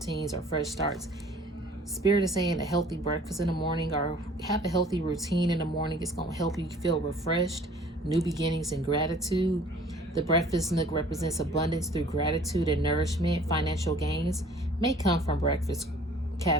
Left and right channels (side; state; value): both; normal; correlation 0.52